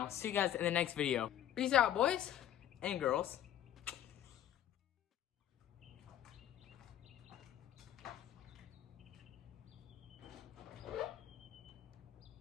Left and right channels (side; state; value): right; quieter; 11.3 dB